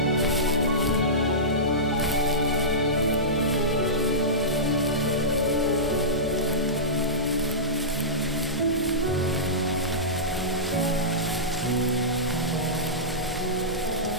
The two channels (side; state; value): both; normal; correlation -0.17